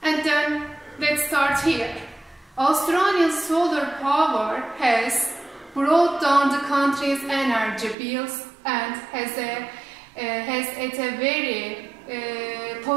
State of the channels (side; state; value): left; drops out; at 8.0 s